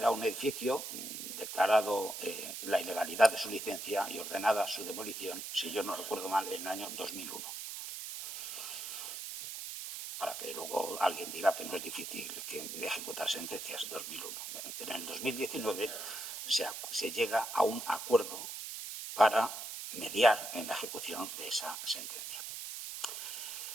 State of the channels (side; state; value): right; noise; hiss, 7 dB below the sound